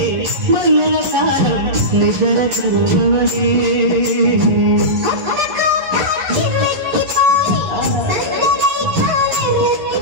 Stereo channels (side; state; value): left; late; 11 ms